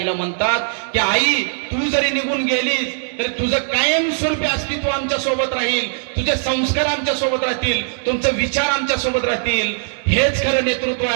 म्हणतात की आई, तू जरी निघून गेलीस तरी तुझं कायमस्वरूपी अस्तित्व आमच्या सोबत राहील, तुझे संस्कार आमच्या सोबत राहतील, तुमचे विचार आमच्या सोबत राहतील। हेच खरं नेतृत्व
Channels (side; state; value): left; silent; 61 dB below the other